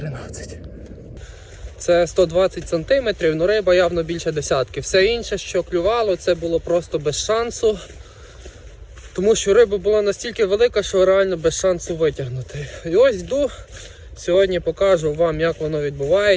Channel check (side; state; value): both; identical; correlation 1.00